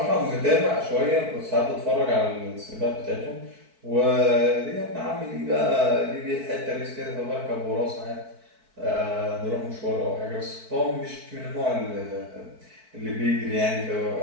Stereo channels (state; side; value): late; left; 4.6 ms